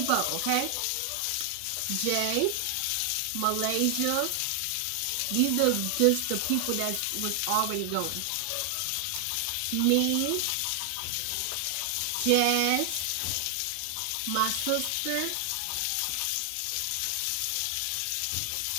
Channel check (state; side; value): different; both; correlation 0.00